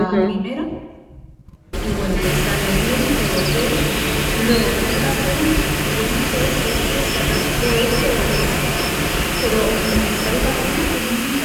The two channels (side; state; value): both; identical; correlation 1.00